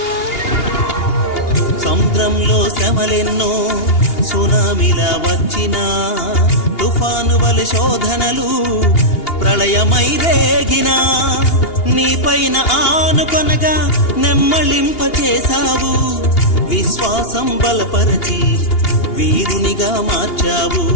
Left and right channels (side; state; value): right; late; 2.8 ms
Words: సముద్రంలో శ్రమలెన్నో సునామిలా వచ్చినా తుఫాను వలె శోధనలు ప్రళయమై రేగినా నీపైన ఆనుకొనగా నెమ్మళింప చేశావు విశ్వాసం బలపరచి వీరునిగా మార్చావు